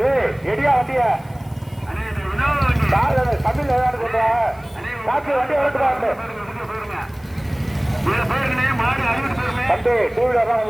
எடியா வண்டிய தமிழ் ஏதாவது சொல்ற காற்று வண்டி வளர்த்துறாங்க தம்பி. டூ வீலர் தான்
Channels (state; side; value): noise; left; hiss, 29 dB below the sound